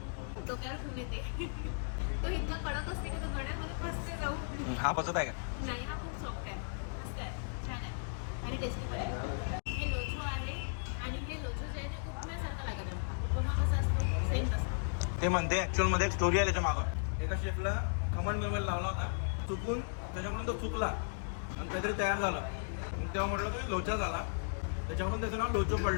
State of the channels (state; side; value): silent; right; digital silence